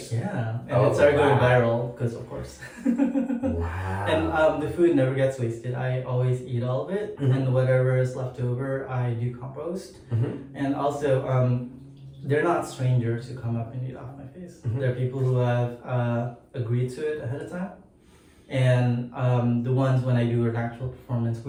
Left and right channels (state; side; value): identical; both; correlation 1.00